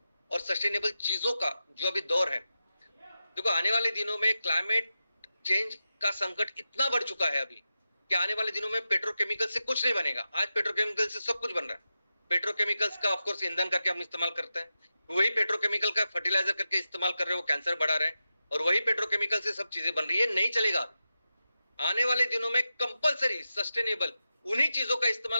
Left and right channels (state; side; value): inverted; both; correlation -0.91